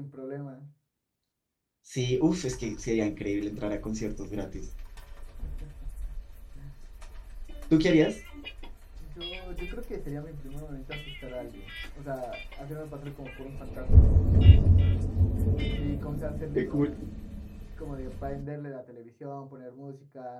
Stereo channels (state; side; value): identical; both; correlation 1.00